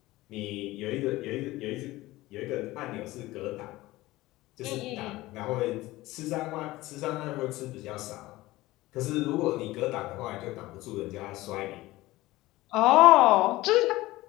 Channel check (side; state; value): right; quieter; 18.3 dB